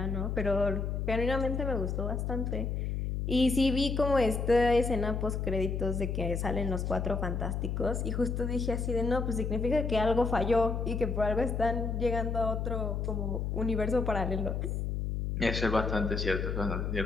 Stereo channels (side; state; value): left; noise; hum, 1 dB below the sound